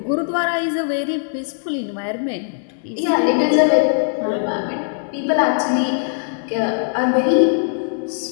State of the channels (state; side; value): silent; right; digital silence